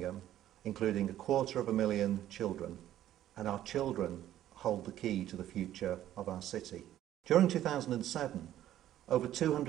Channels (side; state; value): left; quieter; 12.5 dB